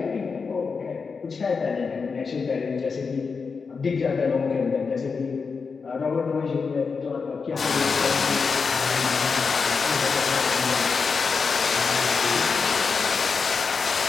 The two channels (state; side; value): quieter; right; 5.1 dB